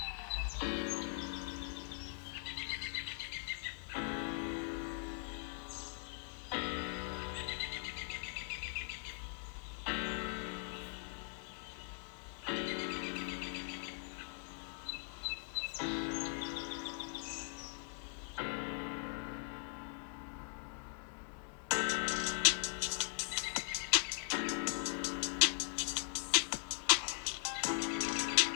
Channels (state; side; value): silent; right; 51 dB below the other